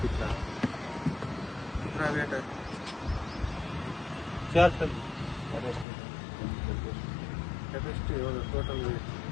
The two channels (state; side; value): drops out; right; at 5.9 s